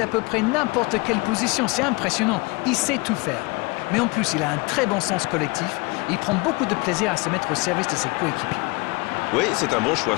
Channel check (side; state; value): right; quieter; 26.3 dB